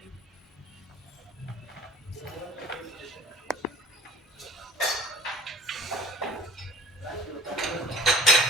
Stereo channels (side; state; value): both; normal; correlation 0.45